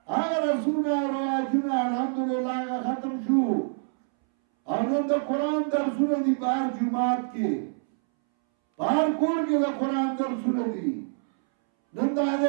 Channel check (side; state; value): left; silent; 61 dB below the other